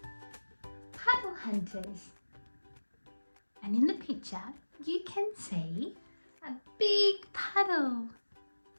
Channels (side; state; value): both; inverted; correlation -1.00